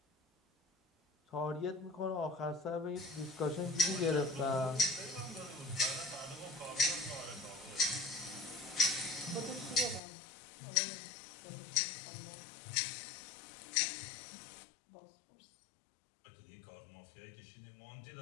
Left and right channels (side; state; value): right; drops out; at 10.0 s